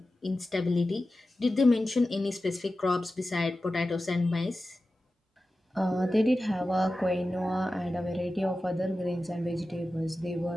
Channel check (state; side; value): normal; both; correlation 0.94